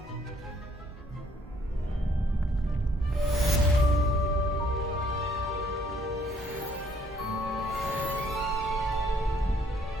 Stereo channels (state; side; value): normal; both; correlation 0.65